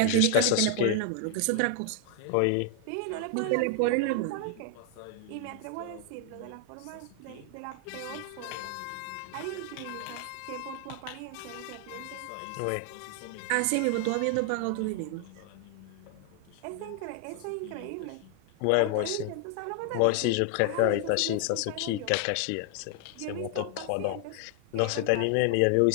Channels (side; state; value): both; different; correlation 0.00